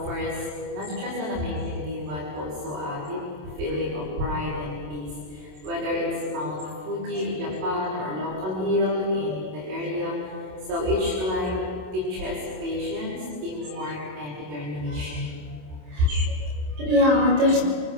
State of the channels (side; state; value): left; late; 27 ms